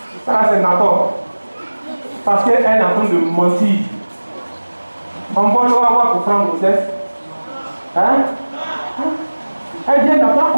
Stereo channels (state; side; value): inverted; both; correlation -1.00